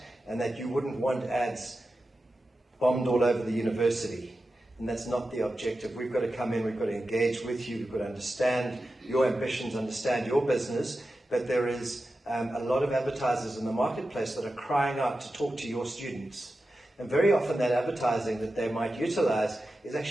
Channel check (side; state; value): both; normal; correlation 0.92